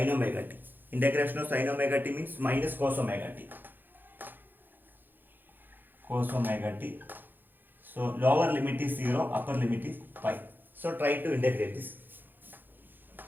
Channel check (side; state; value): left; late; 0.091 ms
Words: omega t? Integration of sin omega t means minus cos omega t. Cos omega t. So lower limit is 0, upper limit is pi. So try to integrate this.